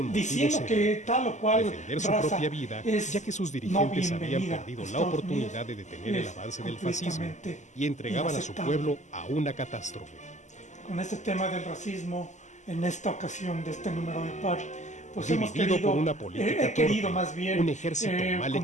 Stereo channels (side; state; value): right; late; 0.34 ms